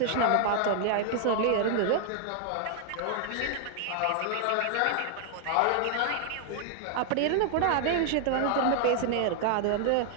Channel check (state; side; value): different; both; correlation 0.00